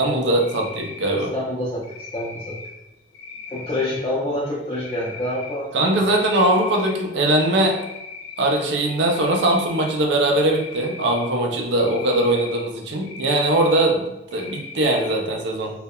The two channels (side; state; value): both; normal; correlation 0.13